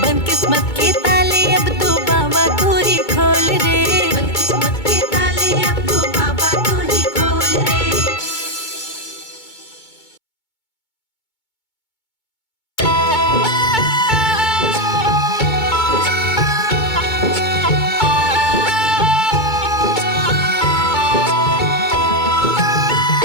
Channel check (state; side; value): late; right; 2.2 ms